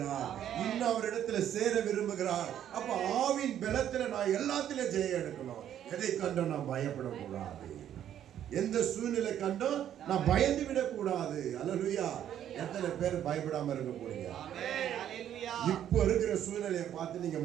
இன்னும் அவரிடத்துல சேர விரும்புகிறார். அப்ப ஆவின் பலத்துல நான் எல்லாத்திலும் ஜெயம் எடுக்கணும். எதை கண்டும் நான் பயப்படக்கூடாது. எந்த சூழ்நிலை கண்டும் நான் பயந்து விடக்கூடாது. அல்லேலூயா. எத்தனை பேர் பயப்படாம இருக்க போறீங்க? இப்ப இருக்கிற சூழ்நிலையை பார்த்து நீங்க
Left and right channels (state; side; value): quieter; left; 10.5 dB